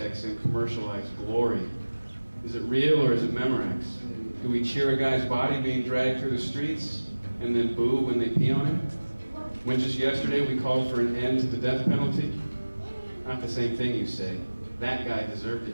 and commercialized glory. Is it real or is it Memorex? Do we cheer a guy's body being dragged through the streets and then boo when they pee on him? When just yesterday we called for an end to the death penalty? Not the same thing, you say. That guy deserved it,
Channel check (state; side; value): inverted; both; correlation -1.00